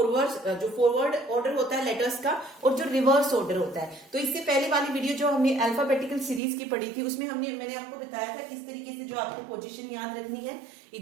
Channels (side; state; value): left; drops out; at 6.4 s